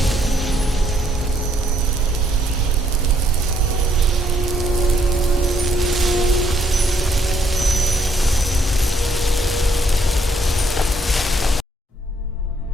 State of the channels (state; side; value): normal; both; correlation 0.70